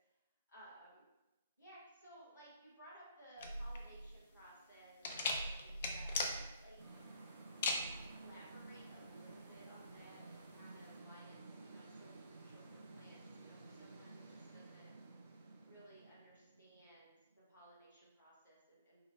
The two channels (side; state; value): both; inverted; correlation -0.60